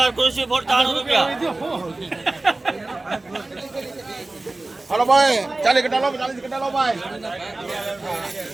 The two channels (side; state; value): left; quieter; 3.0 dB